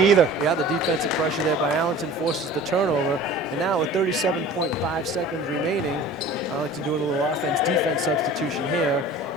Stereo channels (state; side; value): normal; both; correlation 0.42